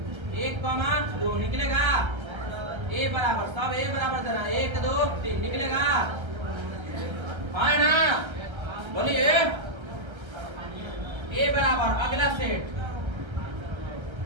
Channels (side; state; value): left; late; 1.3 ms